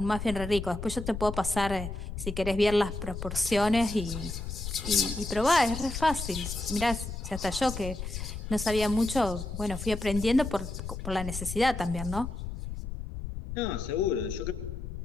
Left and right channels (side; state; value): left; noise; rumble, 7 dB below the sound